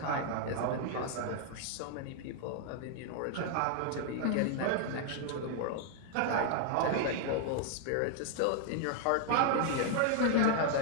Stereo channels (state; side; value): different; both; correlation 0.00